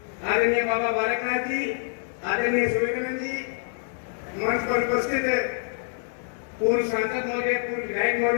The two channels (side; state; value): right; silent; digital silence